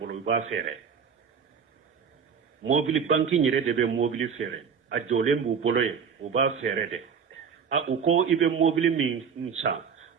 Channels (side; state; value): left; quieter; 6.7 dB